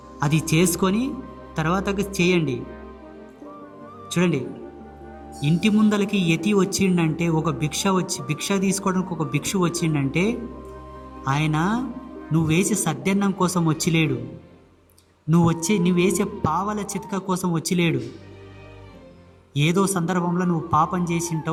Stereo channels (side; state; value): both; identical; correlation 1.00